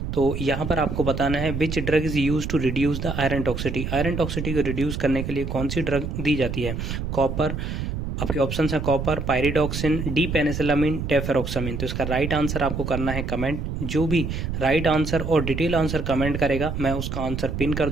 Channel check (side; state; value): right; noise; rumble, 4 dB below the sound